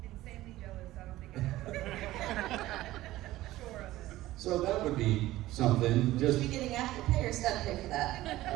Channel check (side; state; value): left; quieter; 16.2 dB